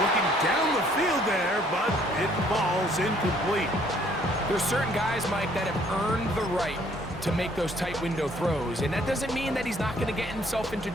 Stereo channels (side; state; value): both; normal; correlation 0.62